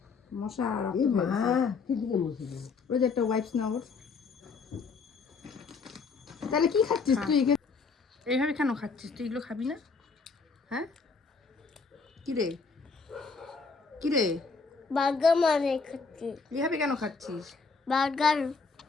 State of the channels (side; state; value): right; quieter; 4.7 dB